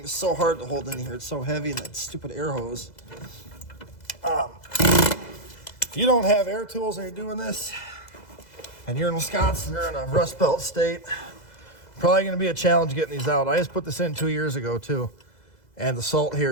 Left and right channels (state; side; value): late; right; 2.0 ms